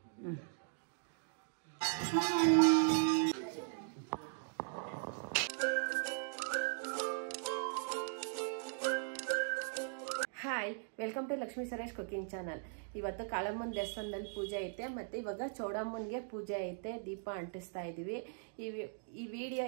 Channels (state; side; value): silent; left; digital silence